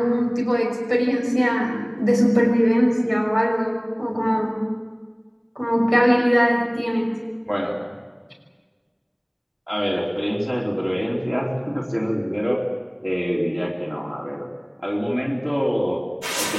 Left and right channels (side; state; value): both; identical; correlation 1.00